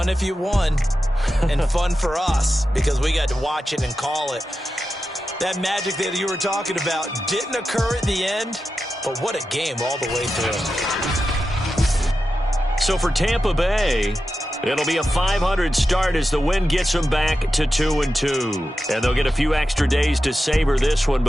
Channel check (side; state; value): both; normal; correlation 0.91